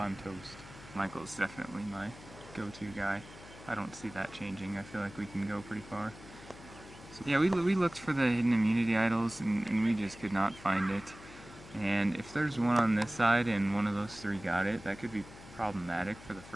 toast. Michael's definitely my go-to guy. I don't see that changing. I feel like we can go pretty far. So yeah, we looked for the hidden immunity idols, and we just could not find it. And if there's one on this side and one of those three got it, that could be problematic for the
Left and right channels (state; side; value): noise; left; hum, 18 dB below the sound